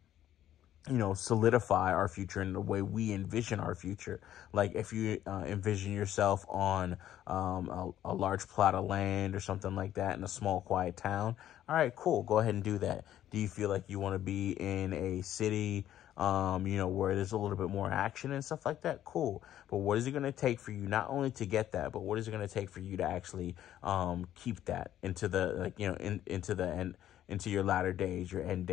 you know, solidify our future in the way we envision our future. Like if you envision yourself on a large plot of land or something like that in a small, quiet town, all right, cool, go ahead and do that. Do you feel like you want to be in a city, you know, where there's a little bit more action and stuff like that? Cool. But what is it going to take for you not only to get that, but what is it going to take for you to actually keep that into the, like, you know, into the end, into your latter days, your end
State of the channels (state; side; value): quieter; right; 11.9 dB